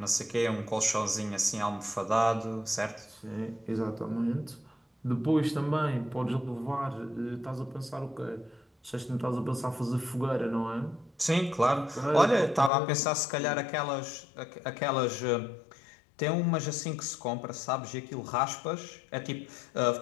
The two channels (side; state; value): right; drops out; at 12.7 s